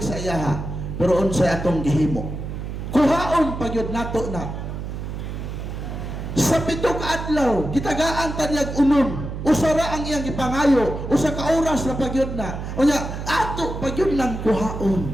sa iyaha. Pero unsay atong gihimo? Kuhaon pagyud nato na. Sa 7 ka adlaw, gitagaan tanyag unon. Usara ang iyang gipangayo, usa ka oras na pagyud na. Unya, ato pagyud nang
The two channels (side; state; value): right; noise; hum, 6 dB below the sound